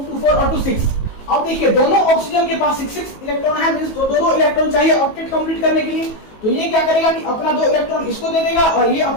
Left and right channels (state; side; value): late; right; 18 ms